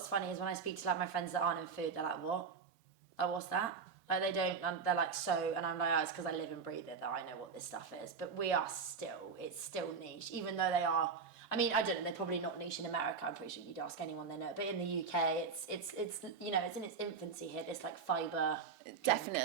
funny is when I speak to like my friends that aren't in food, they're like, what? Like, what's that? Like, they don't, they're like, so, and I'm like, oh, it's because I live and breathe it that I know what this stuff is. But it's still niche, even though they are, I mean, I don't know, they're probably not niche in America, I'm pretty sure you'd ask anyone they know, but in the UK, it's you know, it's in its infancy here, this like fibre drink.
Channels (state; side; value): quieter; left; 5.4 dB